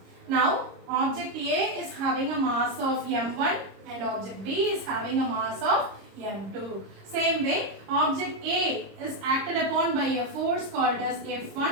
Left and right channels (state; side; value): late; left; 26 ms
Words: Now object A is having a mass of m1 and object B is having a mass of m2. Same way, object A is acted upon by a force called as